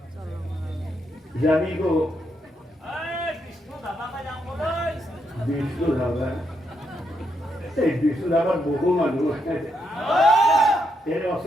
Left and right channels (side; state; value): both; normal; correlation 0.79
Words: যাবি গো বিষ্ণু ধাবা এই বিষ্ণু ধাবার বহু মানুষ এর